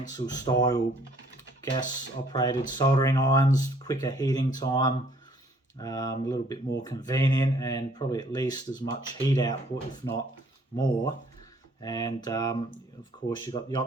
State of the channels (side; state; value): both; normal; correlation 0.61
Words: style gas operated soldering irons. Quicker heating time, a little bit more convenient, and probably at least as much heat output, if not more. And of course, you've got the